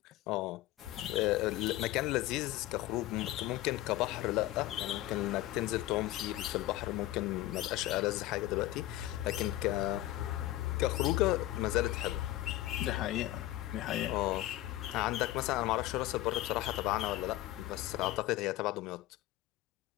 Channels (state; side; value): quieter; right; 15.9 dB